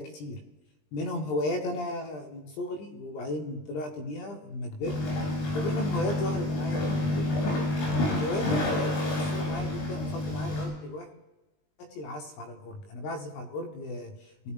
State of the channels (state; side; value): late; right; 20 ms